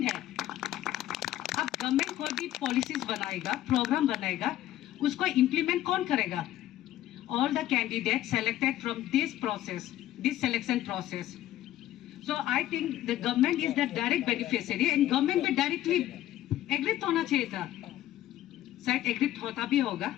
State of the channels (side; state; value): right; quieter; 13.4 dB